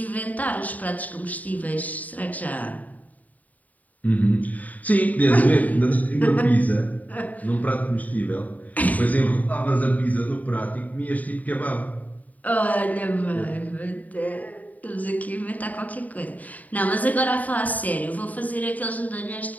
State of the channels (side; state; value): right; late; 0.075 ms